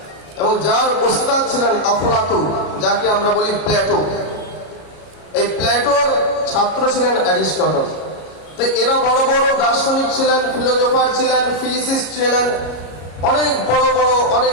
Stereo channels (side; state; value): right; late; 33 ms